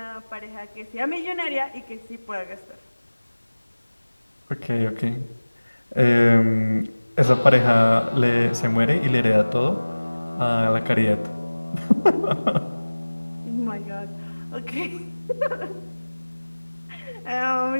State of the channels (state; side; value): inverted; both; correlation -1.00